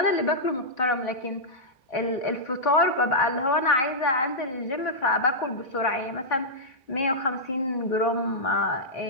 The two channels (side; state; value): right; late; 3.8 ms